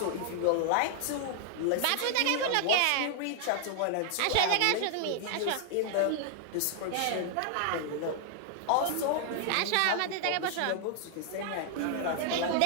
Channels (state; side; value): different; both; correlation 0.00